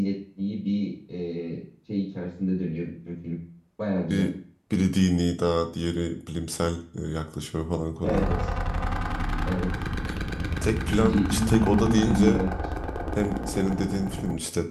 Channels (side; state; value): both; identical; correlation 1.00